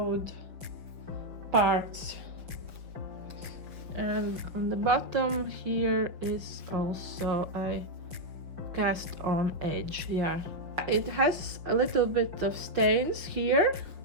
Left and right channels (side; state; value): left; late; 5.9 ms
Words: parts, and on the bottom here is also a cast on edge. Yeah, it has a little bit of stains here,